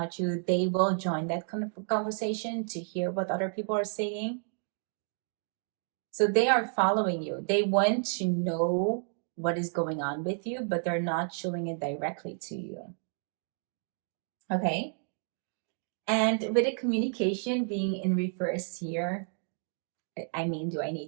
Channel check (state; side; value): silent; left; 57 dB below the other